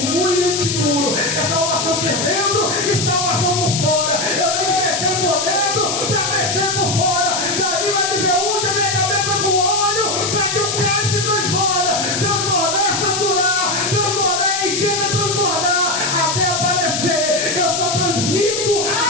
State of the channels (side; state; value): left; noise; hiss, 1 dB below the sound